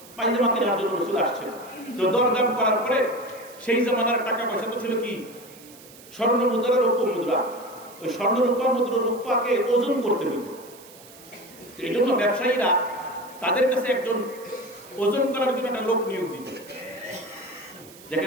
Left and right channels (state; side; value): noise; right; hiss, 21 dB below the sound